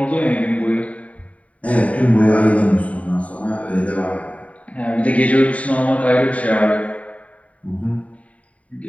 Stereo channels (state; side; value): late; right; 0.067 ms